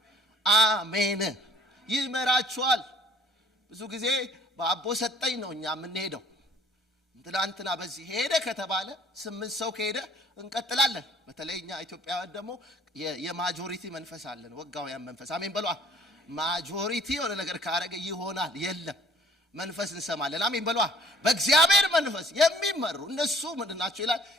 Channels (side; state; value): both; normal; correlation 0.55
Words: አሜን። ይመራችኋል። ብዙ ጊዜ በአቦ ሰጠኝ ነው እኛ የምንሄደው። ትላንትና በዚህ ሄደ ከተባለ 8 ሰው ከሄደ እንቀጥላለን። በተለይ እኛ ኢትዮጵያውያን ደግሞ የማጆሪቲ መንፈስ አለን፣ ወጋውያን መንፈስ። አሜን በሏ። ማጆሪቲ የሆነ ነገር ካረገ ይሆናል። የለም መንፈስ እንሰማለን። አሜን በሏ። በእግዚአብሔር መንፈስ የሚመሩ እነሱ ምንድን ናቸው ይላል?